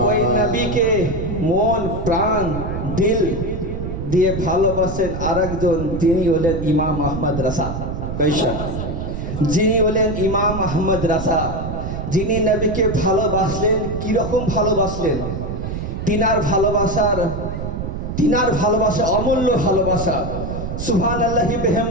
ওই নবীকে মন প্রাণ দিল দিয়ে ভালোবাসেন আরেকজন, যিনি হলেন ইমাম আহমদ রাসা। বেশক, যিনি হলেন ইমাম আহমদ রাসা, যিনি নবীকে ভালোবাসলেন। কিরকম ভালোবাসলেন? তিনার ভালোবাসা অমূল্য ভালোবাসা। সুবহানাল্লাহি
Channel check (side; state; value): right; noise; rumble, 5 dB below the sound